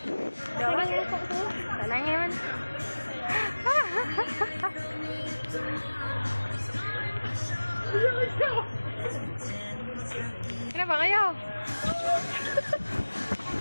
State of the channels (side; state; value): both; inverted; correlation -1.00